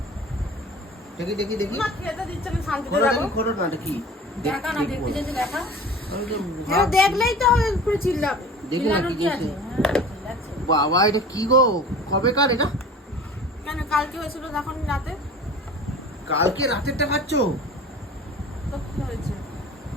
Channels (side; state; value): both; normal; correlation 0.40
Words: দেখি দেখি দেখি, মা খেতে দিচ্ছে না, শান্তিতে খোলো যাবো। দেখি, খোলো না, এটা কি? দেখা না, দেখতে যেতে দেখা। আমি তো এটা দেখলেই তো হবে, পুরো চিল্লাবে। দেখি না কি চিল্লানোর কি আছে? দিয়েছে। হ্যাঁ, চিল্লাচ্ছে। বাবা, এটা কি গো? কবেকার এটা? কেন কালকে হয়েছিল তখন রাতে? কালকে রাতেরটা খাচ্ছ? তো কি হয়েছে?